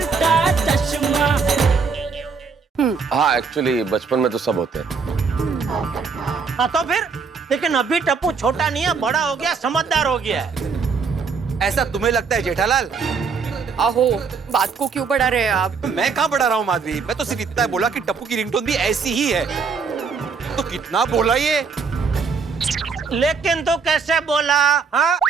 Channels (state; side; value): quieter; left; 5.3 dB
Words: चश्मा। हाँ एक्चुअली बचपन में तो सब होते हैं। हाँ तो फिर, लेकिन अभी टप्पू छोटा नहीं है, बड़ा हो गया, समझदार हो गया है। ऐसा तुम्हें लगता है जेठालाल? आहो, बात को क्यों बढ़ा रहे हैं आप? तो मैं कहाँ बढ़ा रहा हूँ माधवी, मैं तो सिर्फ इतना बोला कि टप्पू की रिंगटोन भी ऐसी ही है। तो कितना बोला ये? लेकिन तो कैसे बोला? हाँ,